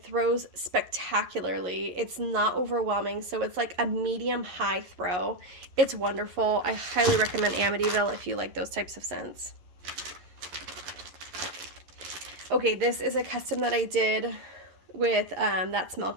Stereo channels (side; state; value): left; late; 11 ms